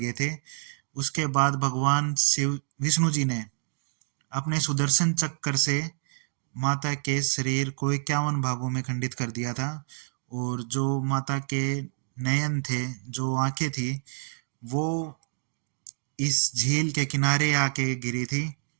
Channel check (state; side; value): silent; left; digital silence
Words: थे। उसके बाद भगवान शिव विष्णु जी ने अपने सुदर्शन चक्र से माता के शरीर को 51 भागों में खंडित कर दिया था, और जो माता के नयन थे, जो आंखें थी, वो इस झील के किनारे आके गिरी थी।